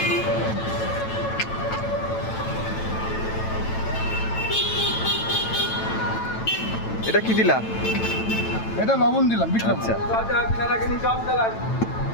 এটা কি দিলা? এটা লবণ দিলাম, বিট লবণ। আচ্ছা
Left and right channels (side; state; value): right; late; 9.0 ms